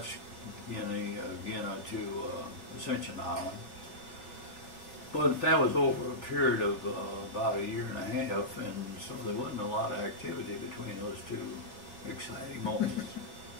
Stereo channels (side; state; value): right; late; 3.4 ms